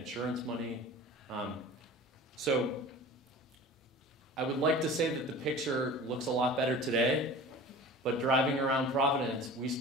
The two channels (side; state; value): both; normal; correlation 0.39